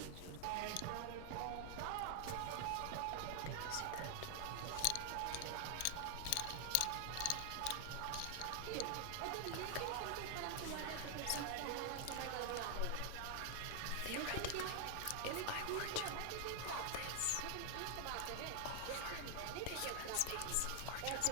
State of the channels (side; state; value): both; different; correlation 0.00